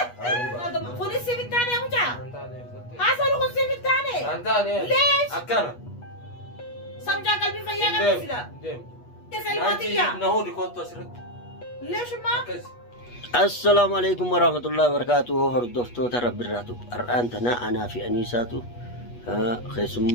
Kunis si bittaane mucaa. Antaane. Haasawni kun si bittaane. Antaane. Lees. Akkana. Samjaa qalbii fayyaa qabsiisa. Deem. Isa ilmaatiyyaa. Nahuu dikootu asirratti. Leeshummaa. Akkasi. Assalamu alaikum warahmatullahi wabarakatuh. Hordoftoota Rabbirraatu. Har'aan tana anaa fi Aniisaatu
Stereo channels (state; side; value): late; right; 8.3 ms